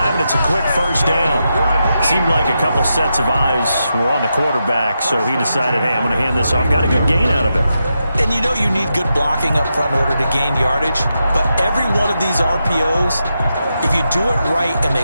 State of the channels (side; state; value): both; inverted; correlation -0.86